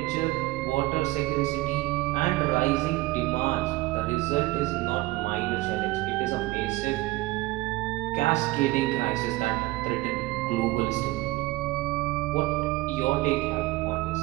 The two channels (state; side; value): quieter; left; 19.6 dB